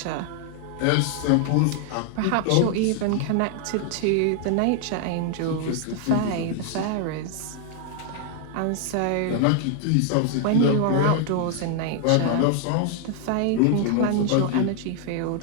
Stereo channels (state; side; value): different; both; correlation 0.00